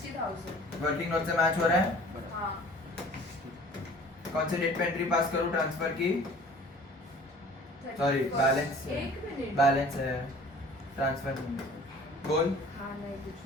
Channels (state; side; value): normal; both; correlation 0.48